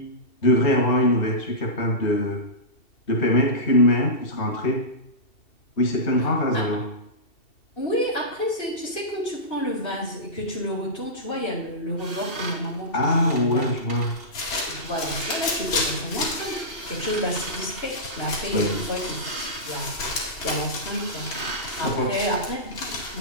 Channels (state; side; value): late; right; 2.7 ms